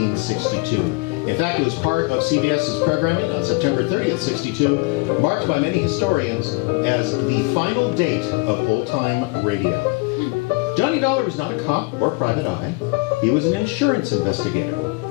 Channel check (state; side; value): quieter; right; 25.4 dB